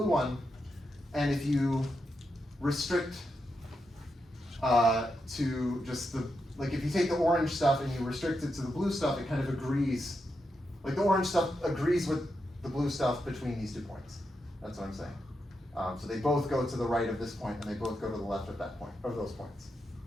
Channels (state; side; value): normal; both; correlation 0.85